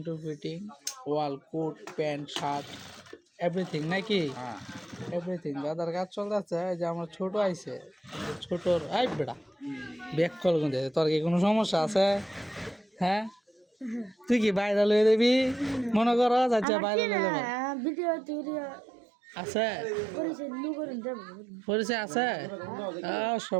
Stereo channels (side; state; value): left; drops out; at 16.7 s